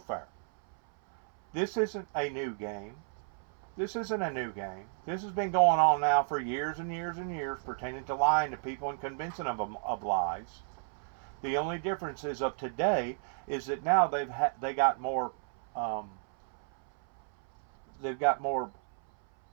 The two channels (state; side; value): silent; left; 56 dB below the other